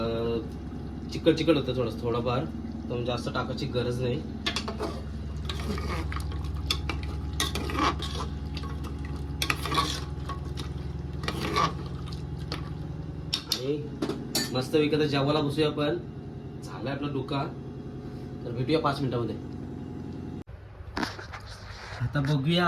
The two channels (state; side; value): identical; both; correlation 1.00